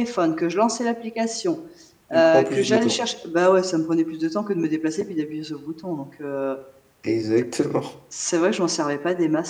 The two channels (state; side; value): identical; both; correlation 1.00